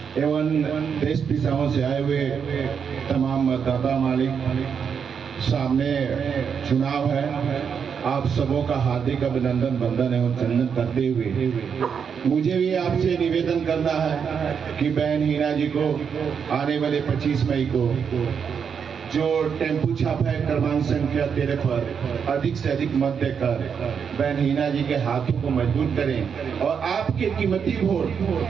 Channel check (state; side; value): quieter; left; 6.9 dB